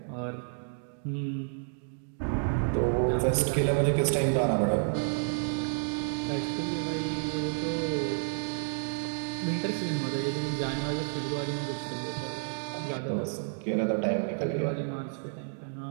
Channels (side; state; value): left; silent; digital silence